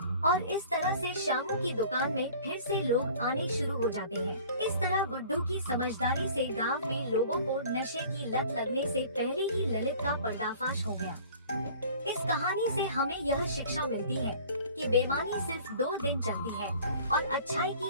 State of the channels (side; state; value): both; inverted; correlation -0.47